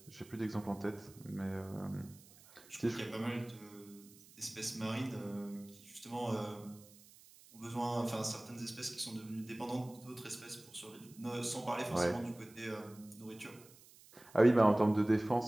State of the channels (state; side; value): noise; right; hiss, 23 dB below the sound